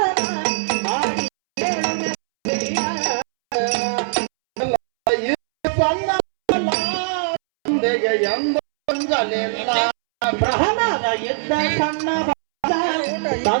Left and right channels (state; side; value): silent; left; 65 dB below the other